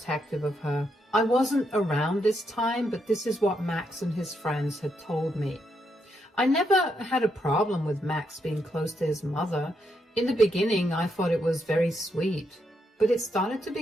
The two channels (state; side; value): normal; both; correlation 0.79